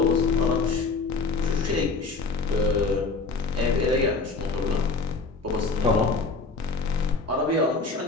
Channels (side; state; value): right; quieter; 4.1 dB